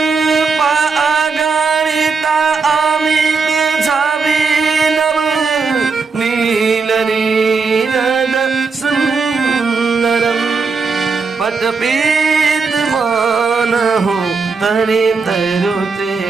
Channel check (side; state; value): left; quieter; 4.7 dB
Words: अगणिता अमित छविनव नील नीरद सुंदरम पटपीत मानहु तनि तरुते